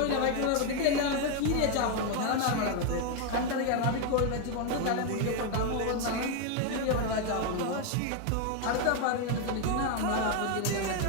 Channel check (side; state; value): both; different; correlation 0.01